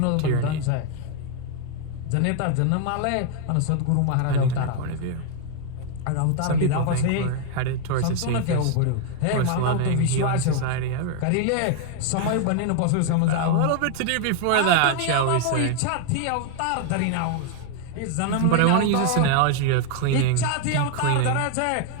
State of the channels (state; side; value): different; both; correlation 0.00